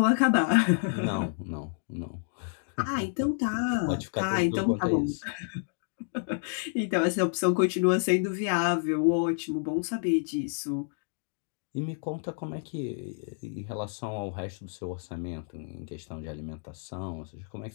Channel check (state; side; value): silent; right; digital silence